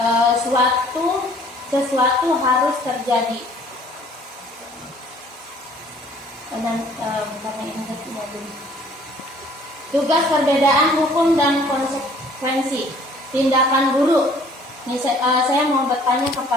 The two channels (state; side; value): normal; both; correlation 0.56